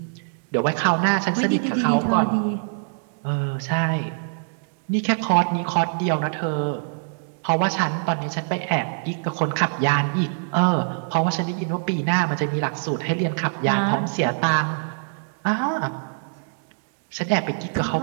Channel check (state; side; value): silent; left; digital silence